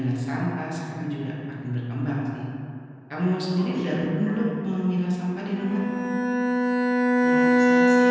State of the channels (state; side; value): identical; both; correlation 1.00